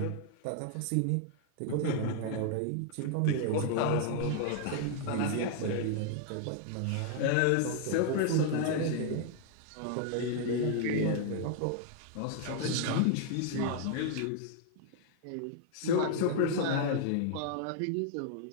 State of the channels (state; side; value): different; both; correlation 0.00